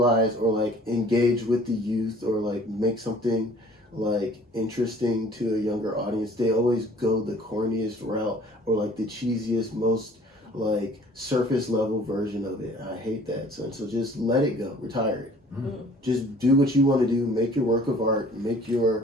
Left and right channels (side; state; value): both; normal; correlation 0.53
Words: or like engage with the youth or like make something like interesting to a younger audience, they always go the corniest route or like the cheesiest, most like surface level version of it. I hate that, son. So just let it go, retire it. Just do what you want to do, make your work of art, make your